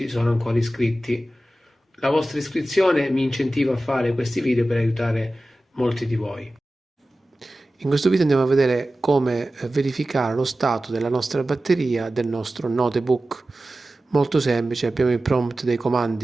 sono ancora iscritti. La vostra iscrizione mi incentiva a fare questi video per aiutare molti di voi. In questo video andiamo a vedere come verificare lo stato della nostra batteria del nostro notebook. Molto semplice, abbiamo il prompt dei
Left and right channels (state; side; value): normal; both; correlation 0.95